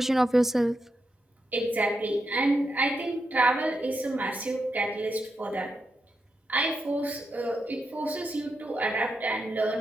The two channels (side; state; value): both; normal; correlation 0.85